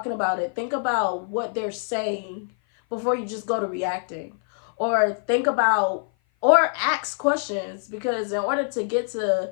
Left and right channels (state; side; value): silent; right; 56 dB below the other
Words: about it, think about what they're saying before you just go to reacting. Or think about, or ask questions, because in order to get to